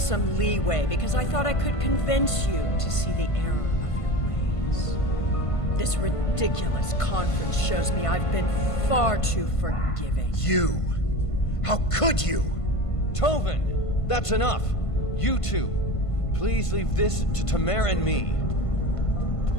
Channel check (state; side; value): late; right; 1.5 ms